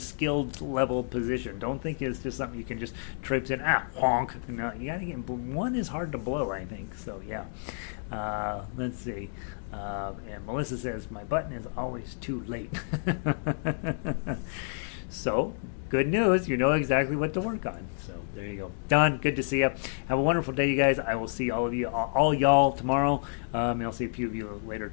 level position. Don't think it's just something you can just traipse in. Honk. No, you gotta get one is hard to blow, I think. So yeah. Let's see. And Melissa says my button is always too late. So, good news. You know exactly what to work on. So, there you go. Don, good to see you. Have a wonderful day, you guys. I will see all of you, all y'all tomorrow. And I'll see a few of you later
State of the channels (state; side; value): silent; right; digital silence